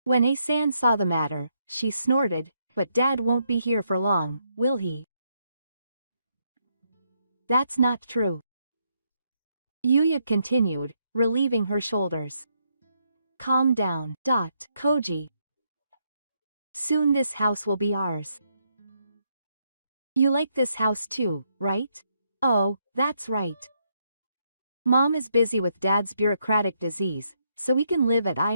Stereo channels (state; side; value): inverted; both; correlation -0.76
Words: When A-san saw the matter, she snorted, "But Dad won't be here for long, will he?" "That's not true. Yuya continued, relieving her shoulders. Calm down. Koji. Soon this house will be ours. You like this house too, right? Oh, that's right. Mom is busy with Dad's bureaucratic disease, so we can live at